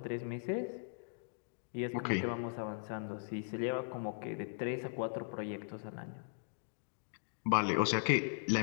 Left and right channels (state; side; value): silent; right; digital silence